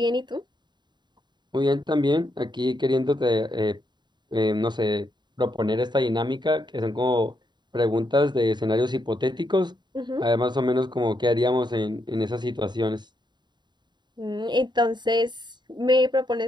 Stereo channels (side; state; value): left; late; 0.21 ms